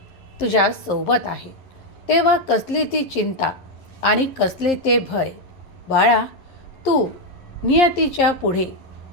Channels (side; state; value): right; late; 11 ms